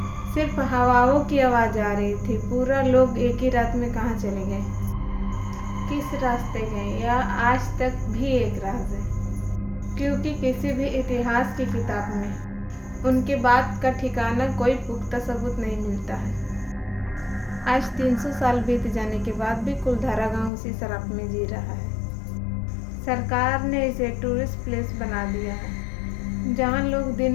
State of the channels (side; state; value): right; drops out; at 20.5 s